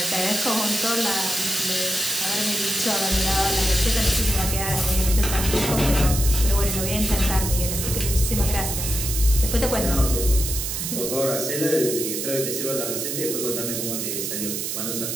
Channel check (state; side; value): noise; right; hiss, 3 dB below the sound